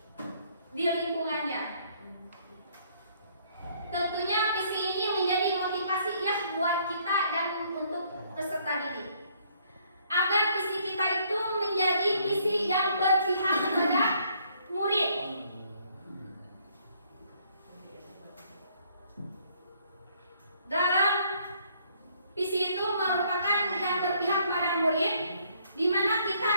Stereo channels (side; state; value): both; inverted; correlation -0.65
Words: di lingkungannya. Tentunya visi ini menjadi motivasi ya buat kita dan untuk peserta didik, agar visi kita itu menjadi visi yang berpihak kepada murid. Dalam visi itu merupakan yang berpihak pada murid, di mana kita